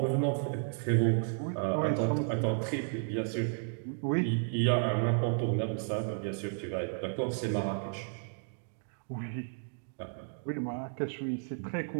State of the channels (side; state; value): left; silent; digital silence